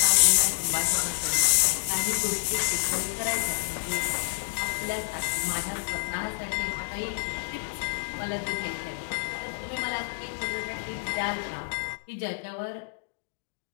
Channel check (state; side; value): silent; right; digital silence